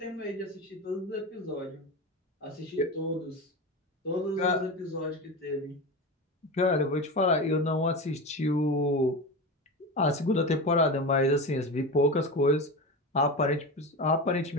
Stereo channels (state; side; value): normal; both; correlation 0.24